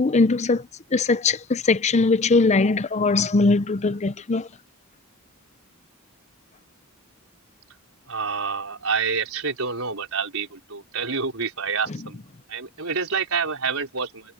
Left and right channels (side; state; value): both; normal; correlation 0.34